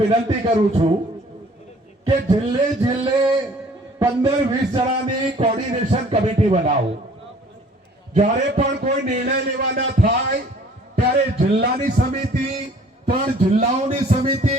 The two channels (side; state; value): both; normal; correlation 0.54